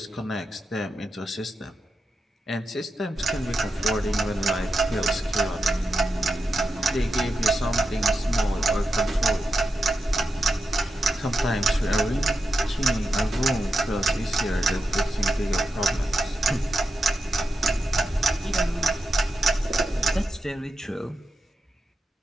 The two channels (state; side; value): normal; both; correlation 0.88